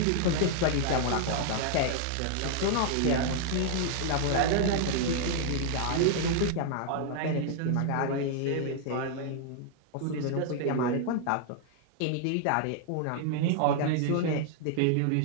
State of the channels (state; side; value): different; both; correlation 0.00